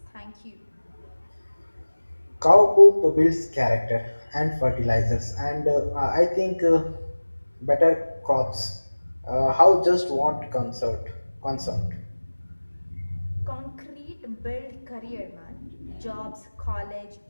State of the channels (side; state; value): both; inverted; correlation -1.00